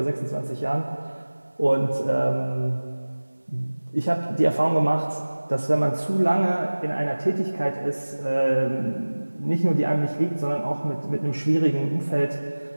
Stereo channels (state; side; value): inverted; both; correlation -1.00